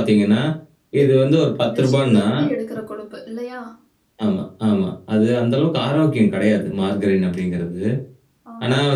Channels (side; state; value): both; identical; correlation 1.00